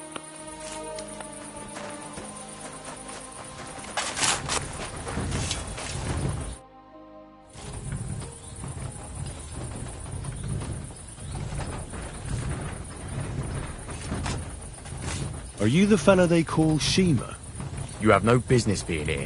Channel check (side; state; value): both; identical; correlation 1.00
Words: Are you the fella they call Shima? You have no business being here.